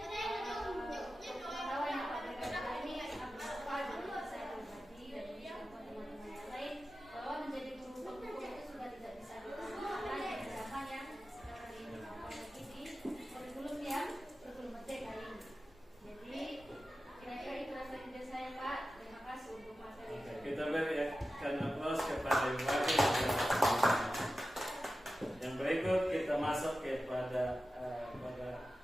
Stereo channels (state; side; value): normal; both; correlation 0.93